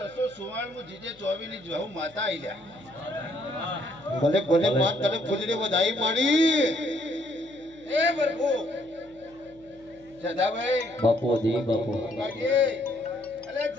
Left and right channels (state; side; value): noise; left; hum, 27 dB below the sound